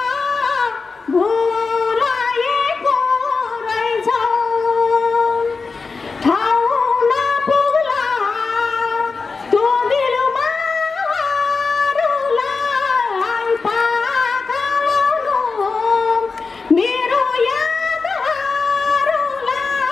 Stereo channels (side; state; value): right; quieter; 4.5 dB